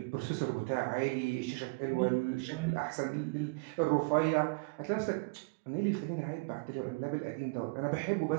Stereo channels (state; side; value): quieter; left; 29.9 dB